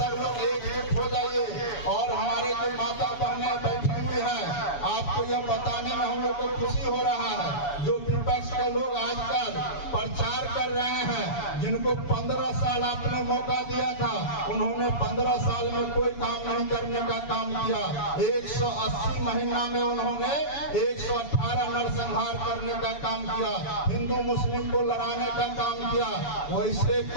लोग एकजुट हो जाइए। और हमारे जो माता बहनें बैठी हुई हैं, आपको यह बताने में हम लोग को खुशी हो रहा है, जो विपक्ष के लोग आजकल प्रचार कर रहे हैं, जिनको 15 साल आपने मौका दिया था, उन्होंने 15 साल में कोई काम नहीं करने का काम किया। 180 महीना में उन्होंने 118 नरसंहार करने का काम किया, हिंदू मुस्लिम को लड़ाने का काम किया। वैसे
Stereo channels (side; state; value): right; late; 7.0 ms